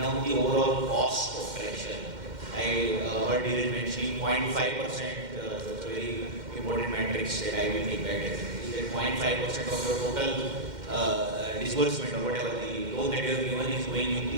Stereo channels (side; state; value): left; late; 2.1 ms